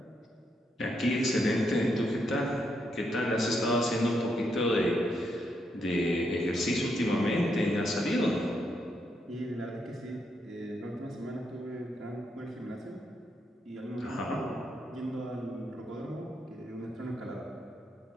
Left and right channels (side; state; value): both; normal; correlation 0.79